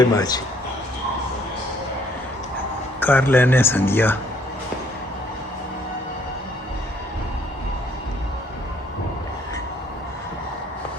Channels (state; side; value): normal; both; correlation 0.64